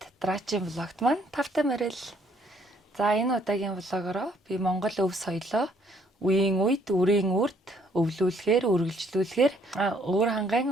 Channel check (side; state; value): both; normal; correlation 0.66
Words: дараагийн влогт маань тавтай морил. За энэ удаагийн влогороо би Монгол өв соёлоо үеийн үед үрийн үрд өвлүүлэхээр, үргэлжлүүлэхээр өөр